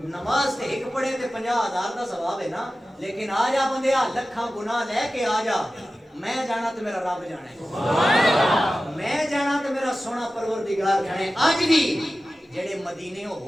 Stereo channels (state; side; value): normal; both; correlation 0.95